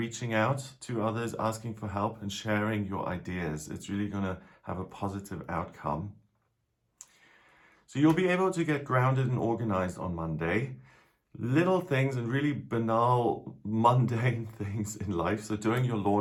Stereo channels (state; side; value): identical; both; correlation 1.00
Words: out to others, asking for help and sharing your ideas. It's really going to have a positive outcome. So you'll be able to get grounded and organized on Monday. Little things and really banal, mundane things in life. So doing your